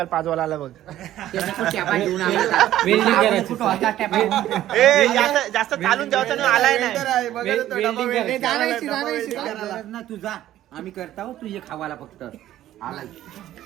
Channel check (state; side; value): quieter; left; 13.2 dB